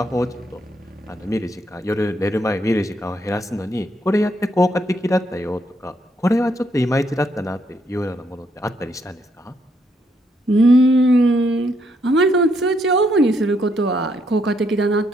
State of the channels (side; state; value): both; normal; correlation 0.74